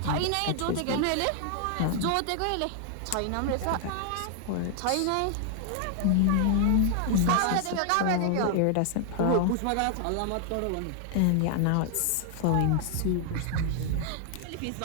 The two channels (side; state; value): both; different; correlation 0.00